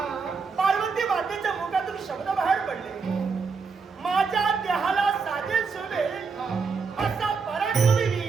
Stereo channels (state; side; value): quieter; left; 5.0 dB